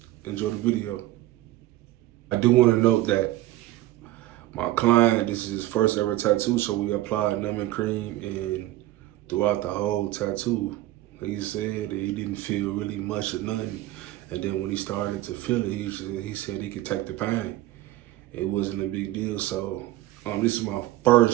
enjoy the video. I do want to note that my client, this is his first ever tattoo, so we applied numbing cream and throughout the whole tattoo, he said that he didn't feel really much or nothing. And then when he started to feel it, he said he could take the pain. It wasn't a big deal. So this is my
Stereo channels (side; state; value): left; quieter; 15.9 dB